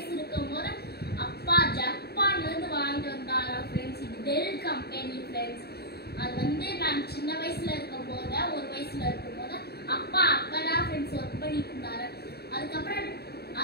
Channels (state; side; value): late; right; 0.47 ms